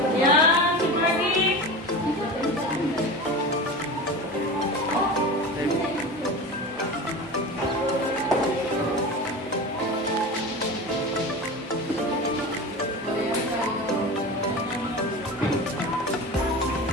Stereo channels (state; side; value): normal; both; correlation 0.29